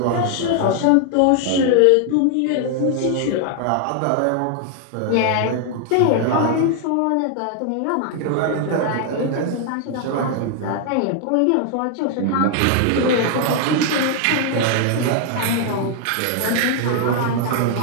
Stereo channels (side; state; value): both; different; correlation 0.00